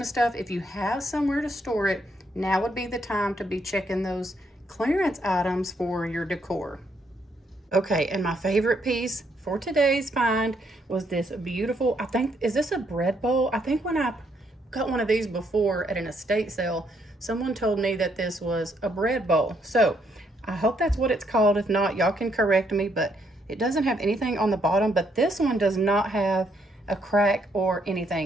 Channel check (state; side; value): normal; both; correlation 0.73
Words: stuff. If you have somewhere to store it, now would be the time to be checking those clearance items for your decor. Okay, and my favorite piece for today's find was this beautiful, I think, is this a bread bowl? I think when I got one of these before at an estate sale, someone told me that this was a bread bowl. So I hope that's what it's called. If not, y'all can correct me, but it doesn't have anything on the bottom, but this one does not have a crack or